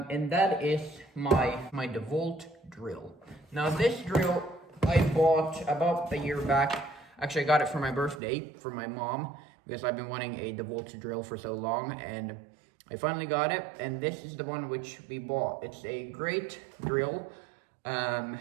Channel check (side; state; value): left; drops out; at 8.2 s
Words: that is my Dewalt drill. Now this drill I bought about a year back. Actually, I got it for my birthday from my mom because I've been wanting a Dewalt drill for so long, and I finally got it. And this is the one which we bought. It's a great drill.